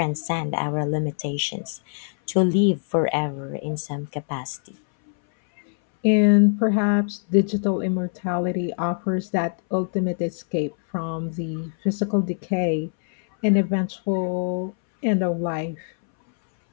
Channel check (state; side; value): silent; right; 62 dB below the other